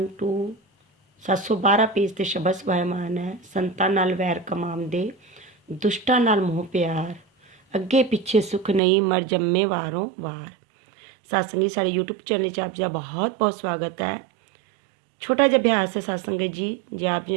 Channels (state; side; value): drops out; left; at 8.8 s